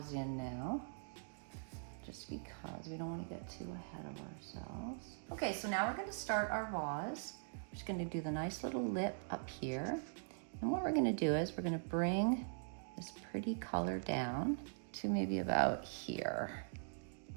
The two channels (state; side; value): silent; left; digital silence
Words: in now, just because we don't wanna get too ahead of ourselves. Okay, so now we're gonna start our vase. We're just gonna do the nice little lip up here. And what we're gonna do is we're gonna bring this pretty color down to maybe about here.